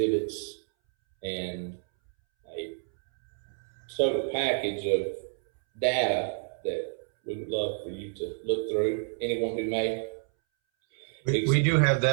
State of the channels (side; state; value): left; silent; 59 dB below the other